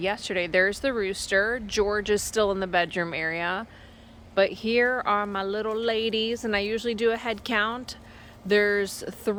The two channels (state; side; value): identical; both; correlation 1.00